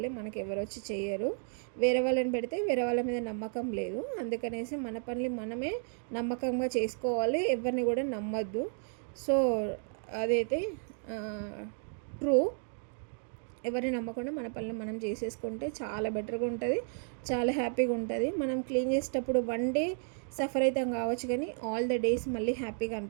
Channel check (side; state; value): left; silent; 56 dB below the other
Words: మనకి ఎవరు వచ్చి చేయరు. వేరే వాళ్ళని పెడితే వేరే వాళ్ళ మీద నమ్మకం లేదు. అందుకనేసి మన పనులు మనమే నమ్మకంగా చేసుకోవాలి, ఎవరిని కూడా నమ్మద్దు. సో అదైతే ట్రూ. ఎవరిని నమ్మకుండా మన పనులు మనం చేసేసుకుంటే చాలా బెటర్గా ఉంటుంది, చాలా హ్యాపీగా ఉంటుంది. మనం క్లీన్ చేసేటప్పుడు 1 day సఫర్ అవుతాం కావచ్చు, కానీ ఆల్ ద డేస్ మళ్ళీ హ్యాపీగా